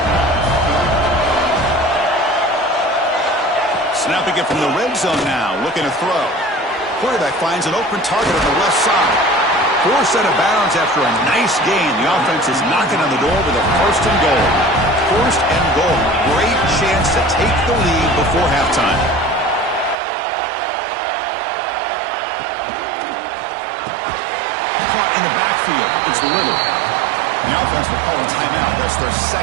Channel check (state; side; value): drops out; left; at 20.0 s